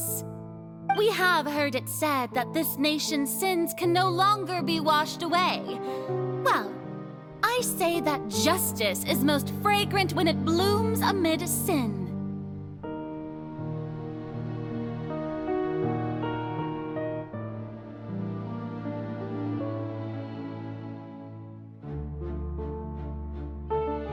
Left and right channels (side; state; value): both; identical; correlation 1.00